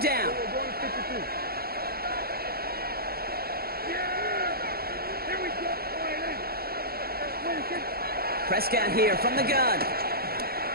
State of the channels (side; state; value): left; late; 0.44 ms